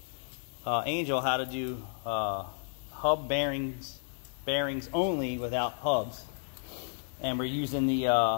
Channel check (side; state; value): right; silent; 56 dB below the other